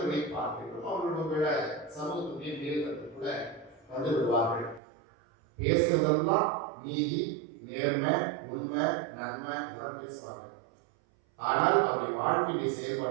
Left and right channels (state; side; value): drops out; left; at 4.8 s